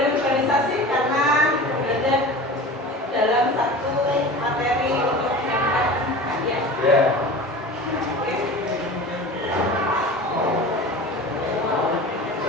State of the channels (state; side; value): normal; both; correlation 0.35